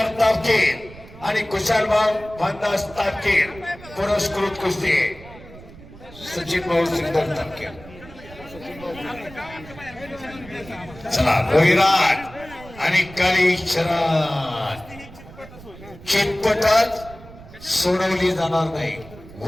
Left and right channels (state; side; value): noise; right; rumble, 18 dB below the sound